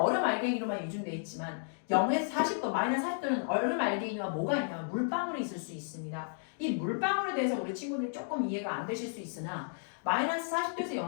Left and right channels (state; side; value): silent; right; digital silence